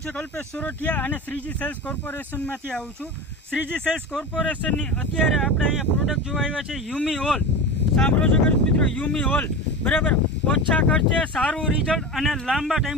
છે કલ્પેશ સોરઠિયા અને શ્રીજી સેલ્સ કોર્પોરેશનમાંથી આવું છું. શ્રીજી સેલ્સ કોર્પોરેશનની અત્યારે આપણે અહીંયા પ્રોડક્ટ જોવા આવ્યા છે યુમી ઓલ. સાંભળો છો ખેડૂત મિત્રો, યુમી ઓલ બરાબર. ઓછા ખર્ચે સારું રિઝલ્ટ અને લાંબા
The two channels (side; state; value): both; normal; correlation 0.27